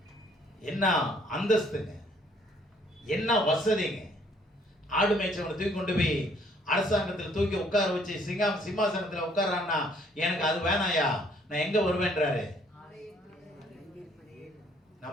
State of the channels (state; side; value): normal; both; correlation 0.63